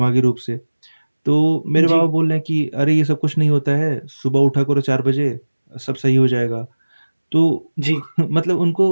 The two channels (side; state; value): both; inverted; correlation -1.00